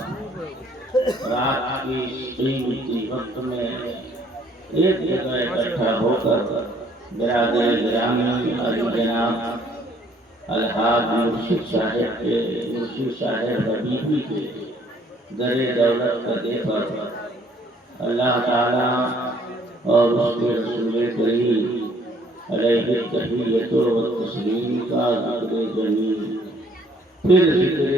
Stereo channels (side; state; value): both; normal; correlation 0.62